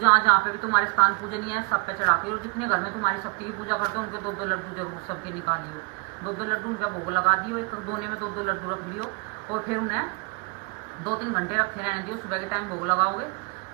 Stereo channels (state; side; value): quieter; left; 34.1 dB